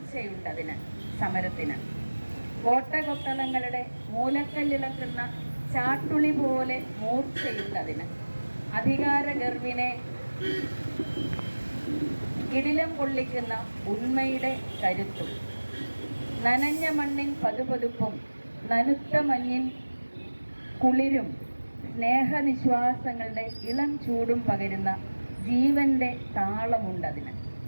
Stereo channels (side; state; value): both; inverted; correlation -1.00